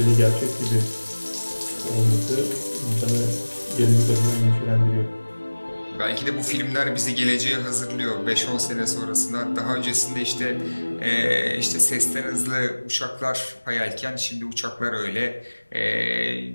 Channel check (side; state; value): both; inverted; correlation -1.00